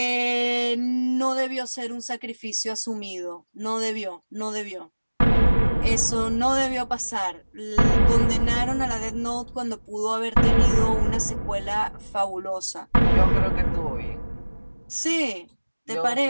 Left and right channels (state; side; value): inverted; both; correlation -1.00